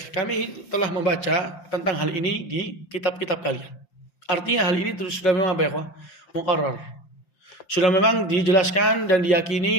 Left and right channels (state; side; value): late; right; 5.8 ms